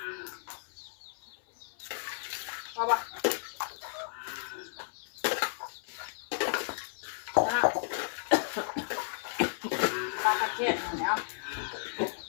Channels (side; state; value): right; silent; 55 dB below the other